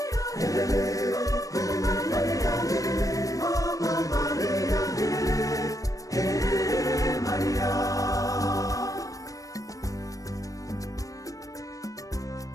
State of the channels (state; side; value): late; right; 0.16 ms